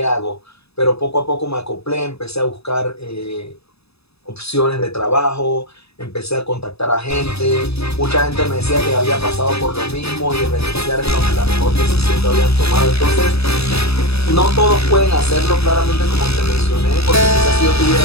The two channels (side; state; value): right; late; 0.78 ms